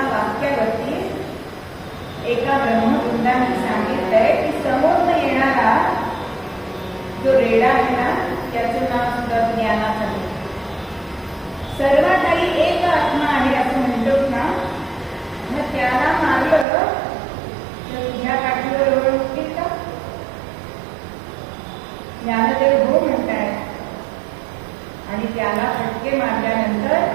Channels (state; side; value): drops out; left; at 16.7 s